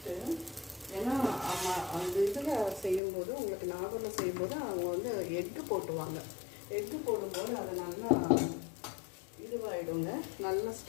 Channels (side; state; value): right; drops out; at 3.0 s